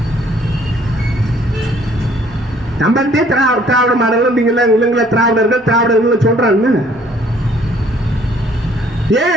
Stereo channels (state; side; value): normal; both; correlation 0.60